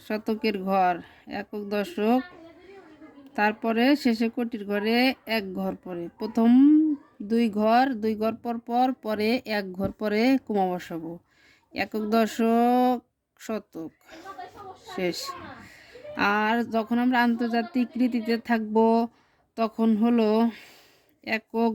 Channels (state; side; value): identical; both; correlation 1.00